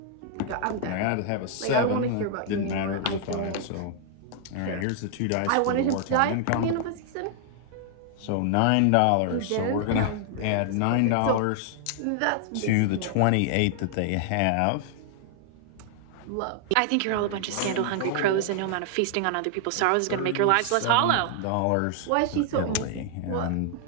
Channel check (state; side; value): different; both; correlation 0.00